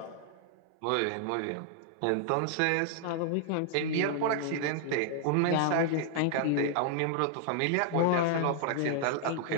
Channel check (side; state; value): both; different; correlation -0.01